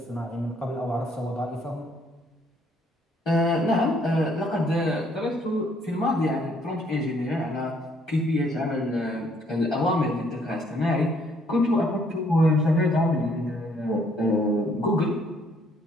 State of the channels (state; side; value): normal; both; correlation 0.66